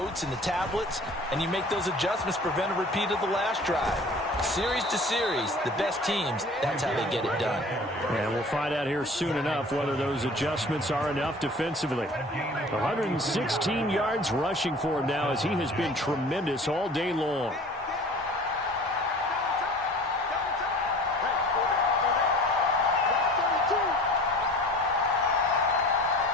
and the tablets, and you make those adjustments, prevent a repeat of the last drive. Series to series, the best teams, that's how they get it done. And we'll find out here soon enough whether those adjustments are enough defensively. 116 yards rushing for him now as he has been tremendous all day long.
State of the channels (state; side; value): normal; both; correlation 0.44